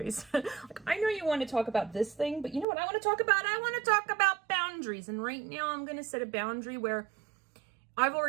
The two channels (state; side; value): drops out; left; at 2.7 s